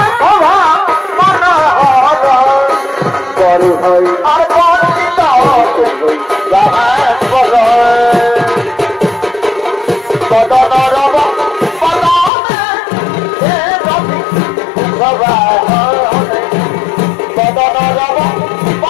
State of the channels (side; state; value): right; drops out; at 12.3 s